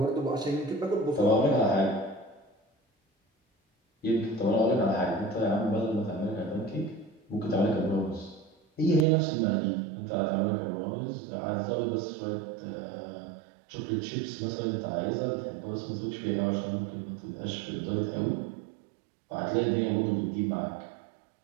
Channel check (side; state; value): left; drops out; at 9.1 s